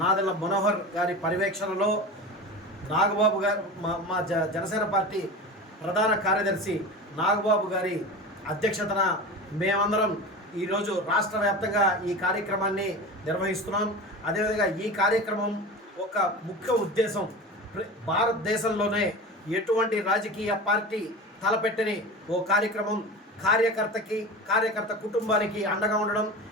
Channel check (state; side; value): normal; both; correlation 0.31